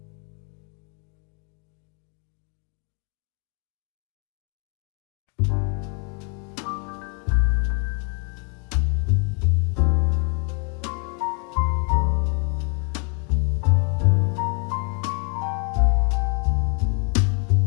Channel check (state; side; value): quieter; right; 37.7 dB